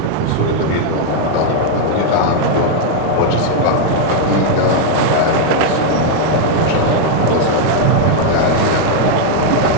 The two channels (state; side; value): different; both; correlation 0.00